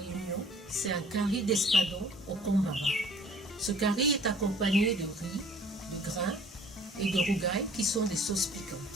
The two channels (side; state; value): both; normal; correlation 0.53